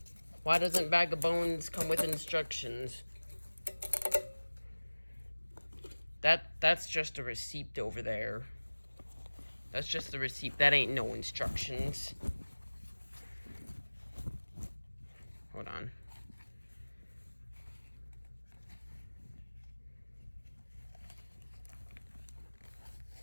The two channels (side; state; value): both; inverted; correlation -1.00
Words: Why doesn't Bag of Bones come with instructions? That's just a receipt over there. That's just a receipt. That ain't no instructions. Hold on.